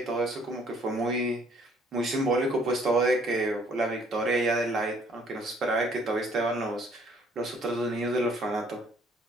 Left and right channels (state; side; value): normal; both; correlation 0.61